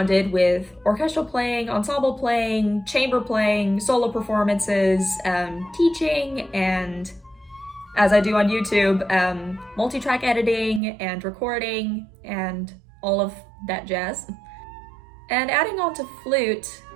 with orchestral playing, ensemble playing, chamber playing, solo performances, teaching, and as I do on YouTube, multi-track editing and recording and all of that jazz. And adding on to flute,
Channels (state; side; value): drops out; left; at 10.8 s